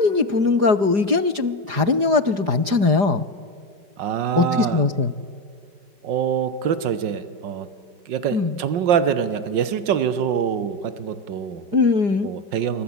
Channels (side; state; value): left; late; 4.9 ms